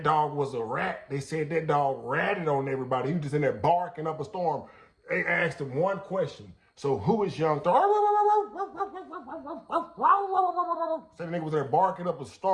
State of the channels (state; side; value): identical; both; correlation 1.00